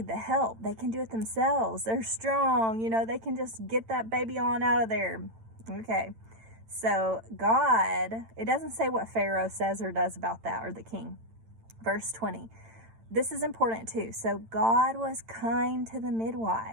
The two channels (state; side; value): late; left; 8.9 ms